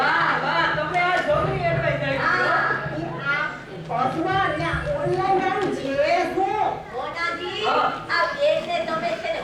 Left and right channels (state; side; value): identical; both; correlation 1.00